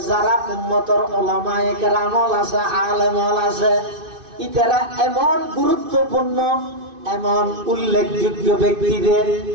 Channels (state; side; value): late; left; 2.5 ms